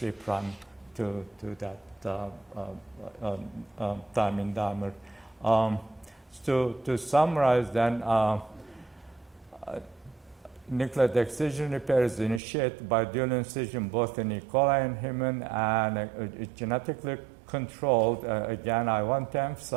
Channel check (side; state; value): left; drops out; at 12.4 s